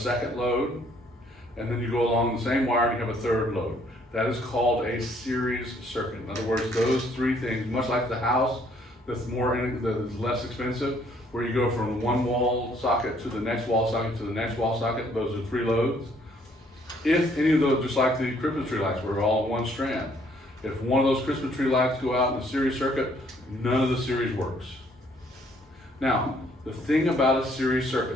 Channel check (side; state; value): both; normal; correlation 0.64